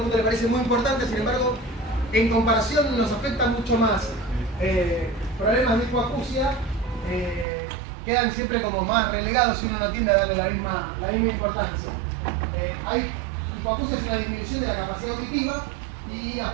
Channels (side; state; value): left; drops out; at 7.5 s